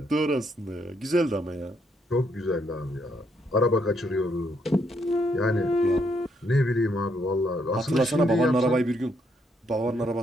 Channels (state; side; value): normal; both; correlation 0.74